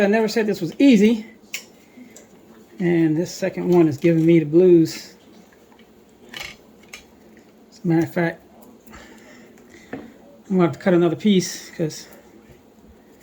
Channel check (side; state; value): both; identical; correlation 1.00